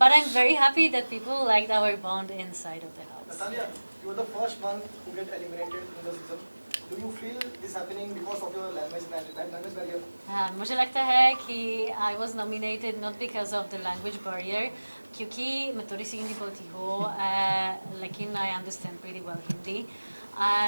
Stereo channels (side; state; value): both; inverted; correlation -1.00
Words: I'm very happy that people liked our bond inside of the house. Natalia, you were the first one who get eliminated in the season. Do you feel this happening because of your language barrier? मुझे लगता है कि I was nominated not because of the language barrier, क्योंकि मैं थोड़ी सी हिंदी बोलती हूँ, लेकिन I understand pretty well Hindi,